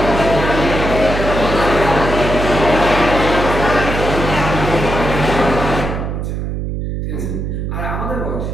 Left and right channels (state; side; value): noise; right; hum, 3 dB below the sound